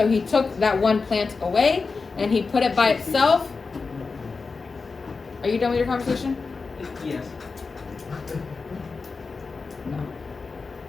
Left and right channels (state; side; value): quieter; right; 4.4 dB